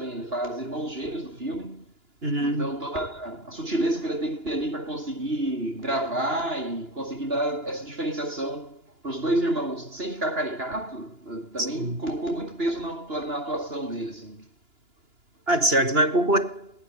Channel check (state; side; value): late; left; 2.9 ms